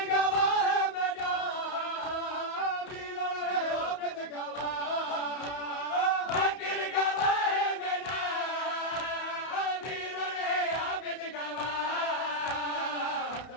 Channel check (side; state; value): right; late; 31 ms